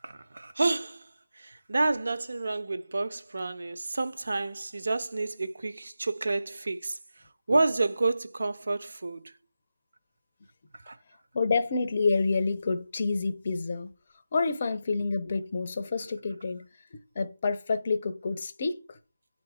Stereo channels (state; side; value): inverted; both; correlation -0.90